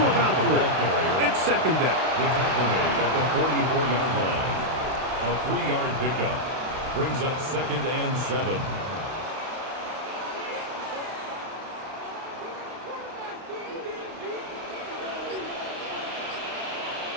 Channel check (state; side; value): late; left; 31 ms